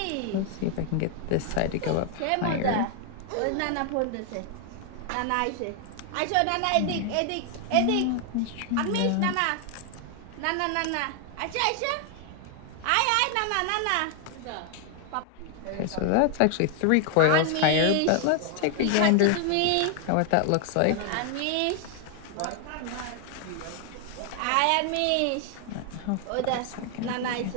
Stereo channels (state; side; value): different; both; correlation 0.00